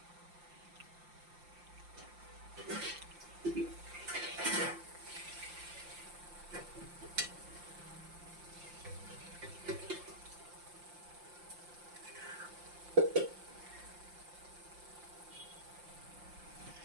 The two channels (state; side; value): late; left; 5.7 ms